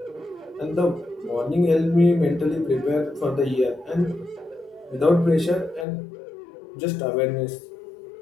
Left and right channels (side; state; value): right; drops out; at 5.9 s